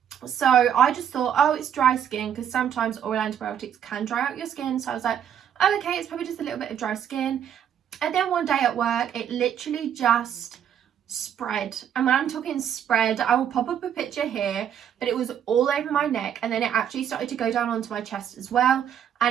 So I just thought, oh, it's dry skin, because sometimes oral antibiotics can dry out your skin. So I was like, oh, okay, it's probably just a little bit of dry skin. And then one day at work, it literally just spread. And when I'm talking spread, I will pop up a picture here, but it was all over my neck, and then it actually started to go down onto my chest as well,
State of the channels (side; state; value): left; quieter; 9.1 dB